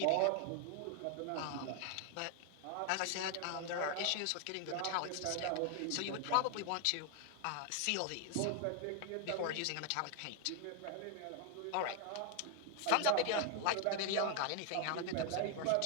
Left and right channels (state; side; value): different; both; correlation 0.00